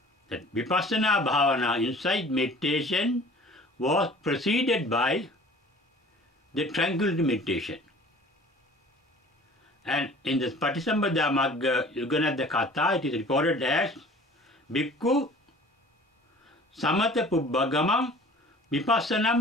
That vipassana bhavana, insight meditation, was preceded by the tranquility meditation. And in the Patisambhida Magga Yuganadha Katha, it is reported as Bhikkhu samatha pubbhagamam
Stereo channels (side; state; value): both; normal; correlation 0.47